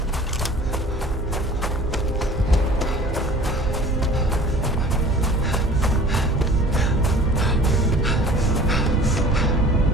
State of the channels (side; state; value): both; normal; correlation 0.46